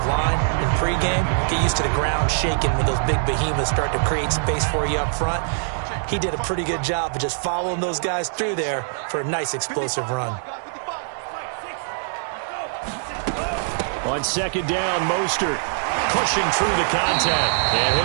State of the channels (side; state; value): left; silent; digital silence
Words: line in pregame. Get used to the ground shaking when those big behemoths start to create space for you up front. He did a pretty good job of just following those guys through there for a nice explosive run. On second down, Mostert pushing through the contact. And